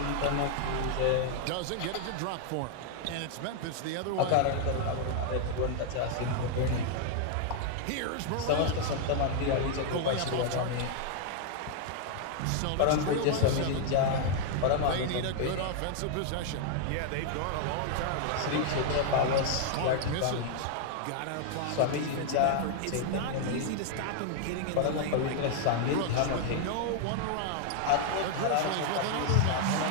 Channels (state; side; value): different; both; correlation 0.00